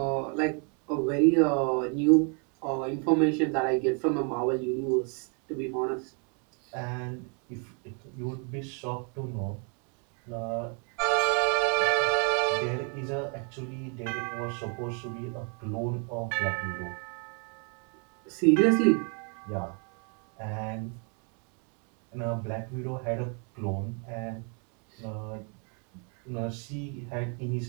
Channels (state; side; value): quieter; left; 38.7 dB